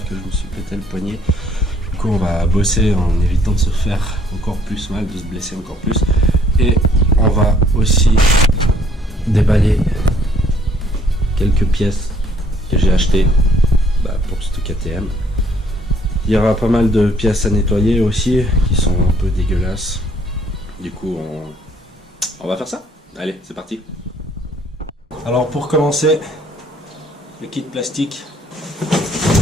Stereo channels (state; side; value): normal; both; correlation 0.63